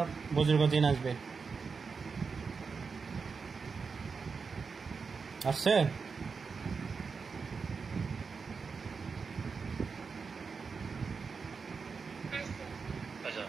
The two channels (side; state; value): left; quieter; 5.1 dB